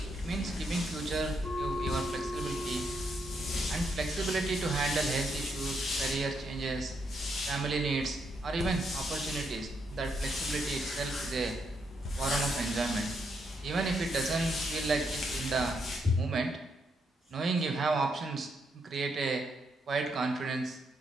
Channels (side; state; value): both; normal; correlation 0.78